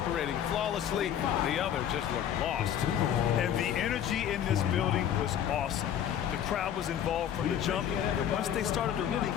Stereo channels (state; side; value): quieter; right; 9.9 dB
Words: flawlessly. The other just looked lost. And the energy in this building was awesome. The crowd was involved from the jump, and once they started to really